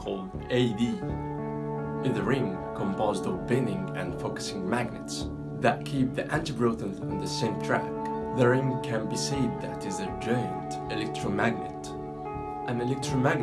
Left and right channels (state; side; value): identical; both; correlation 1.00